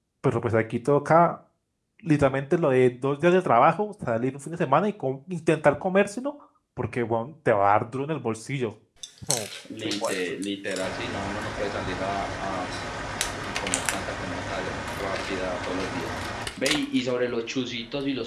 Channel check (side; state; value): both; identical; correlation 1.00